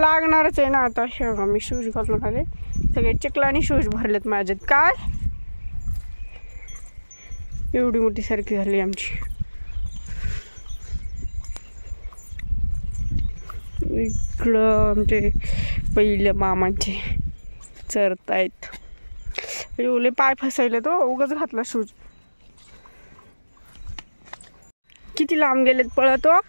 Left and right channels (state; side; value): inverted; both; correlation -1.00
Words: आहे ना आता. शेवगा मी शूज घालून आले, सगळे चिखलाने शूज भरलेत माझ्यात. काय एवढी मोठी सारखी झाली आमची. इकडं आमचे पहिले मामांचे चरतायत. एवढे पाय फसायले तो उगाच घातला शूज. किती लांब गेलेत पळतो